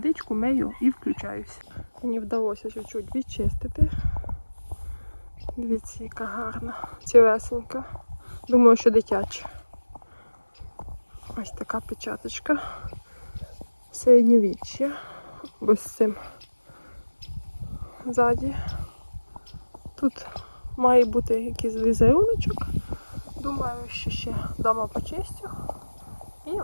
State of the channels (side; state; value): both; inverted; correlation -1.00